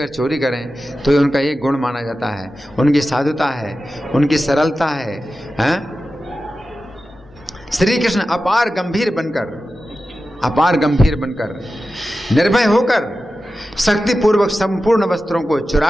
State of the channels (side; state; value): both; normal; correlation 0.93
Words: चोरी करें तो उनका एक गुण माना जाता है, उनकी साधुता है, उनकी सरलता है। श्री कृष्ण अपार गंभीर बनकर निर्भय होकर शक्तिपूर्वक संपूर्ण वस्त्रों को